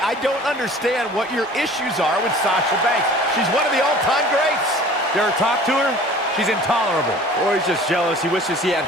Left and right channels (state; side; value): normal; both; correlation 0.46